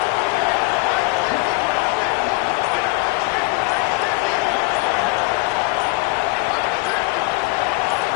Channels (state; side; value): quieter; right; 24.5 dB